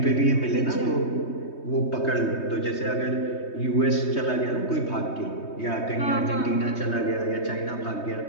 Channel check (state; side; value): late; right; 3.2 ms